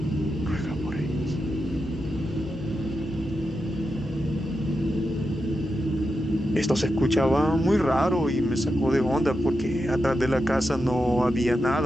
ruega por ellos. Esto se escuchaba muy raro y me sacó de onda porque atrás de la casa no había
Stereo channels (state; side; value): normal; both; correlation 0.88